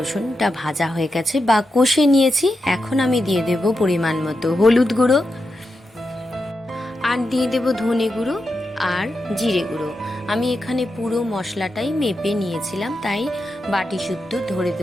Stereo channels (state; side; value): normal; both; correlation 0.88